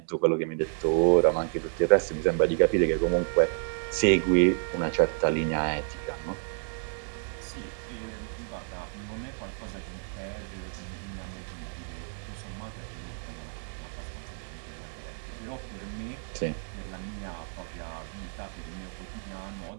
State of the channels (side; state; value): left; silent; 58 dB below the other